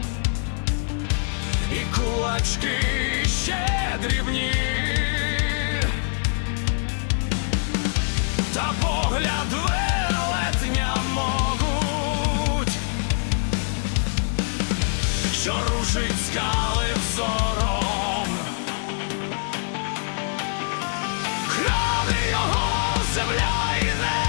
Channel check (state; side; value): silent; right; 60 dB below the other